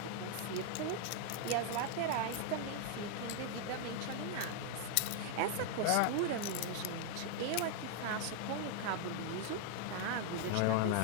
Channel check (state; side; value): different; both; correlation 0.00